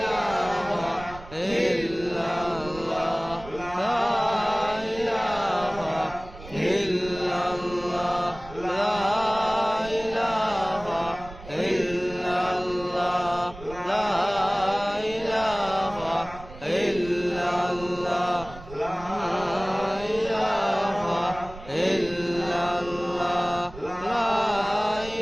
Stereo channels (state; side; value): noise; right; rumble, 16 dB below the sound